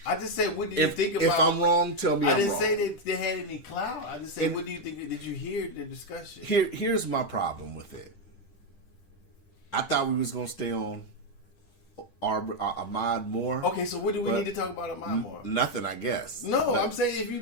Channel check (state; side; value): late; right; 10 ms